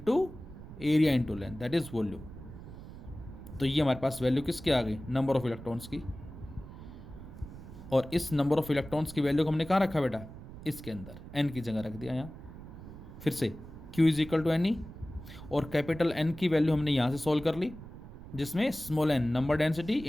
area into length, that is volume. तो ये हमारे पास वैल्यू किसकी आ गई, नंबर ऑफ इलेक्ट्रॉन्स की। और इस नंबर ऑफ इलेक्ट्रॉन्स की वैल्यू को हमने कहाँ रखा बेटा, इसके अंदर एन की जगह रख दिया यहाँ। फिर से Q is equal to N e, और कैपिटल एन की वैल्यू हमने यहाँ से सॉल्व कर ली, जिसमें small n number density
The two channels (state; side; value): noise; right; rumble, 14 dB below the sound